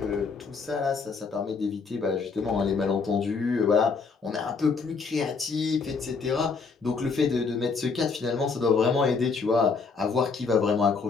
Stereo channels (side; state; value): right; quieter; 4.8 dB